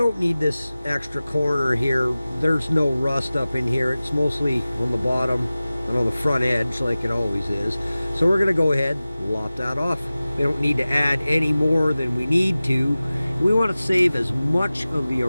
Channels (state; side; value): inverted; both; correlation -0.97